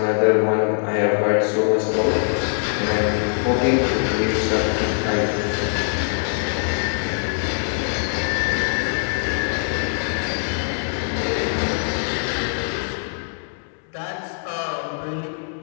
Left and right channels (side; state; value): right; silent; 60 dB below the other